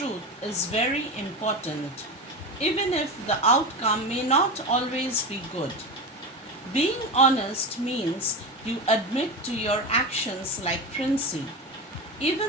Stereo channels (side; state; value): both; normal; correlation 0.22